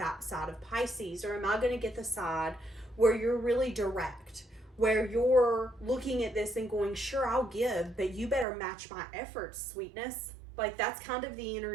side of Pisces? Or am I going to get the side where you're really direct, where you're looking at this and going, sure, I'll give, but you better match my efforts, sweetness. Like, that's kind of the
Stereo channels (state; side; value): drops out; left; at 8.5 s